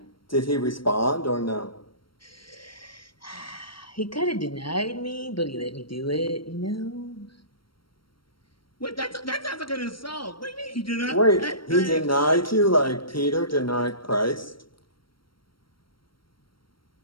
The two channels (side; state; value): right; late; 0.73 ms